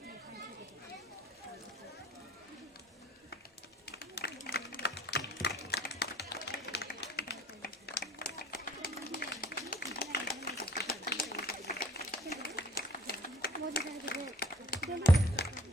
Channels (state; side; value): normal; both; correlation 0.54